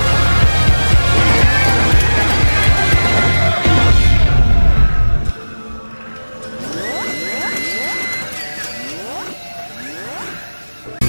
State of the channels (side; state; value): both; inverted; correlation -1.00